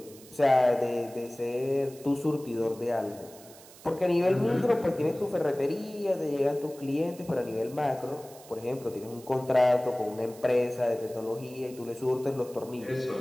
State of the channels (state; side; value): noise; right; hiss, 21 dB below the sound